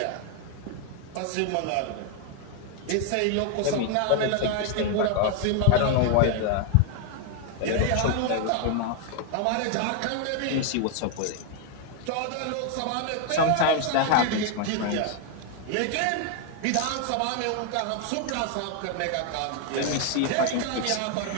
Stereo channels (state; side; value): different; both; correlation 0.00